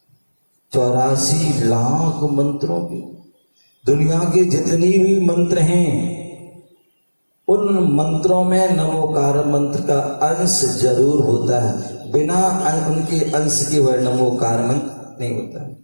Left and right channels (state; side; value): inverted; both; correlation -1.00